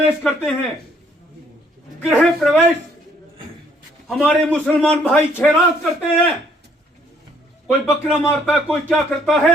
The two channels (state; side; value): normal; both; correlation 0.65